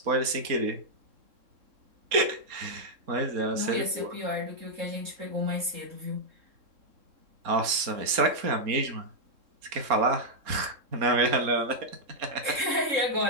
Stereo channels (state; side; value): late; left; 3.7 ms